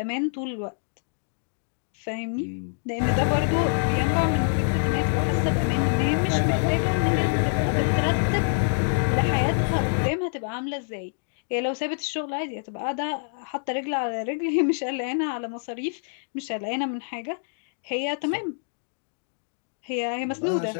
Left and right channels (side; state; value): right; silent; digital silence